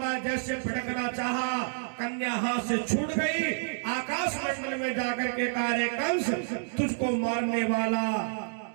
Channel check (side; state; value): left; silent; digital silence